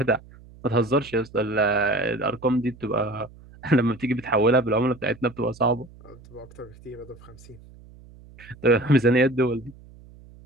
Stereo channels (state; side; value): noise; right; hum, 22 dB below the sound